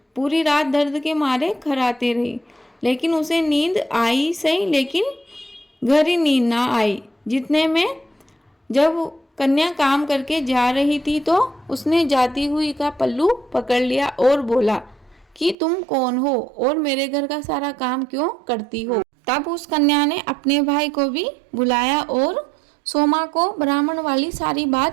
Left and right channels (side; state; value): left; drops out; at 15.6 s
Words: पूरी रात दर्द के मारे खर्राते रही, लेकिन उसे नींद आई सही, लेकिन गहरी नींद ना आई। जितने में जब कन्या काम करके जा रही थी तो उसने जाती हुई का पल्लू पकड़ लिया और बोला कि तुम कौन हो और मेरे घर का सारा काम क्यों करती हो। तब उस कन्या ने अपने भाई को भी बुलाया और सोमा को ब्राह्मण वाली सारी